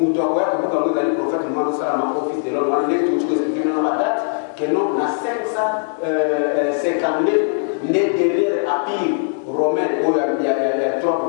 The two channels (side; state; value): right; silent; 66 dB below the other